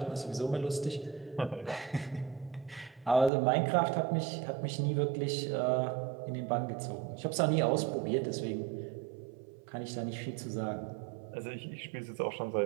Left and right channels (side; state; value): left; drops out; at 3.3 s